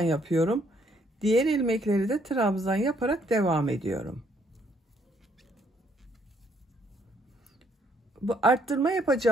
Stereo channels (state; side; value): normal; both; correlation 0.68